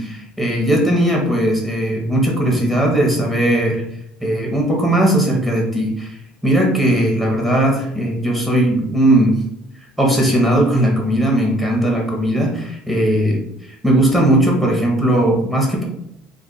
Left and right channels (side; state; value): both; normal; correlation 0.61